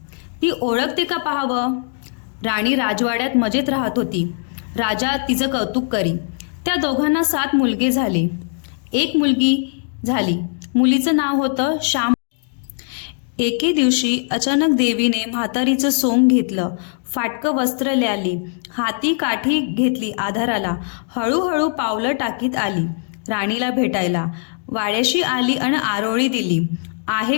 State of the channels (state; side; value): silent; right; 60 dB below the other